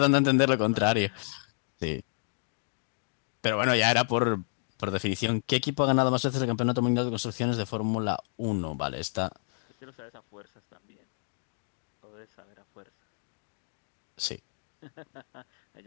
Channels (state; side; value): silent; right; digital silence